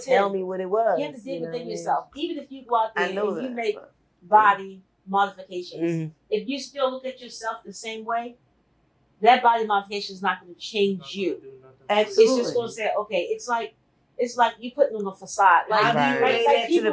tell me what it was. You have to dig know what I within mean? yourself. Even if you go out there I know and you that. make body modifications, Mhm. if you still look at yourself the same way, that body modification is not going to change Not you. gonna do nothing. Absolutely. It's just going to say, okay, it's like you putting on a facade. Like, How do you Right. relate like that to the people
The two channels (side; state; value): both; identical; correlation 1.00